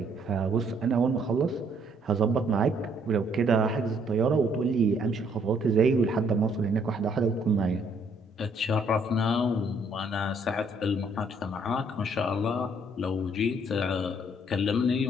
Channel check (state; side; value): normal; both; correlation 0.66